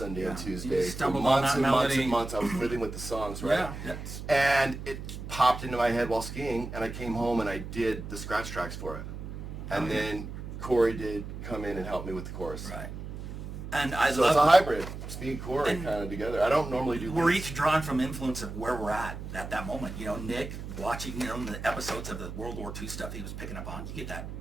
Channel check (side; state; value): right; noise; hum, 9 dB below the sound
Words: and Yeah. Tuesday. You For stumbled on months that and months melody. and months. I was living with the songs, right? Yeah. That's, And it popped into my head while skiing, and I came home and I did the scratch tracks for it. And Okay. then Corey did come in and help me with the chorus. right. And I So it's a love. hybrid. It's me and Corey And kind of together. I don't normally do We're leads. each drawn from influence of where we're at that moment. Nick watching, the episodes of the World War II stuff he was picking up on. You get that